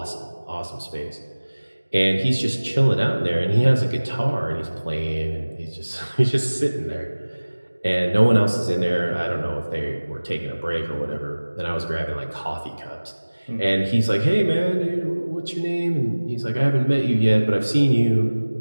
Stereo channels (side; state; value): both; inverted; correlation -1.00